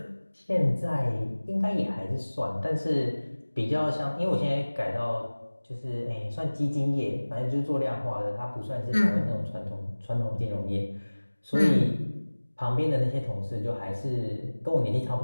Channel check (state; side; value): inverted; both; correlation -1.00